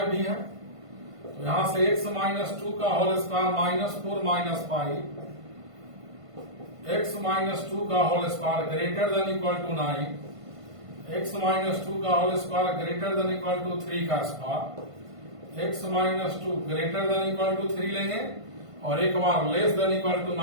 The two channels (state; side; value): late; left; 1.5 ms